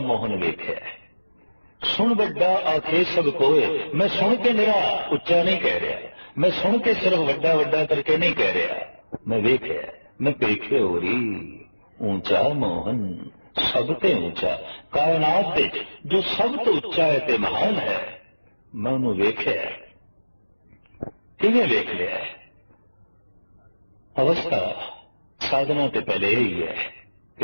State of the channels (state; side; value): inverted; both; correlation -1.00